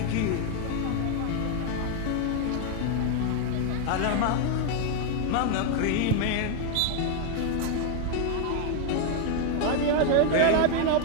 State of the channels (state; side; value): different; both; correlation 0.00